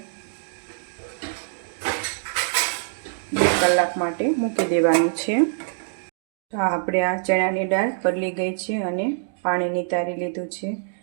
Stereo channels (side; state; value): left; silent; digital silence